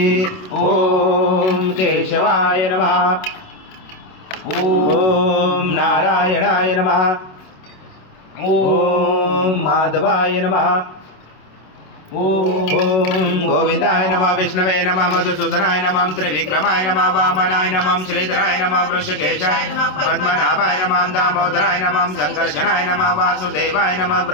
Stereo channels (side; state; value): right; late; 27 ms